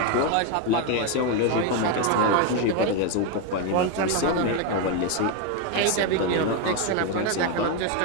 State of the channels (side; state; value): both; different; correlation 0.01